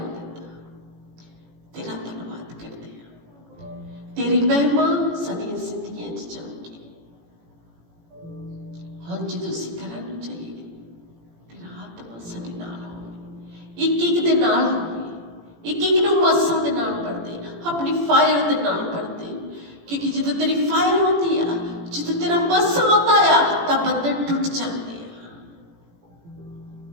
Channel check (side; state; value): left; late; 18 ms